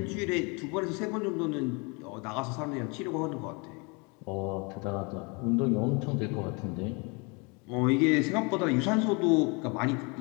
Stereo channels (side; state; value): right; quieter; 30.9 dB